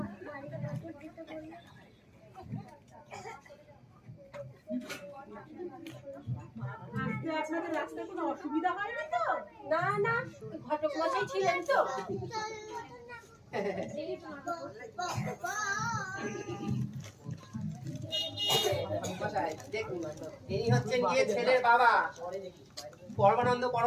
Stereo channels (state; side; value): identical; both; correlation 1.00